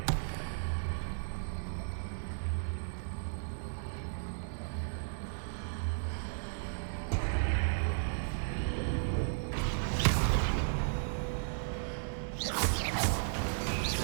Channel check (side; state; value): left; silent; digital silence